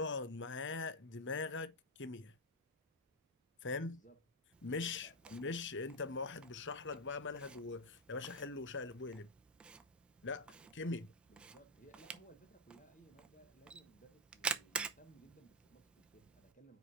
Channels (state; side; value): normal; both; correlation 0.00